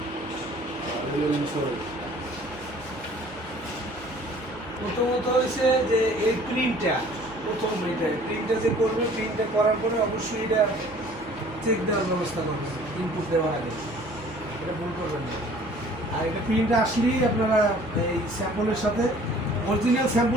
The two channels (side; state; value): both; normal; correlation 0.52